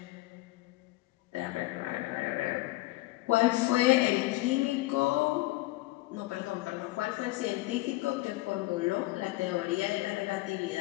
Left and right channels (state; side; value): quieter; right; 19.7 dB